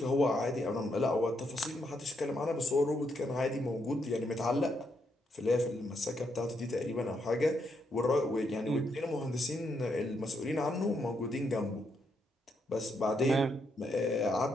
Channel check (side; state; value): both; normal; correlation 0.78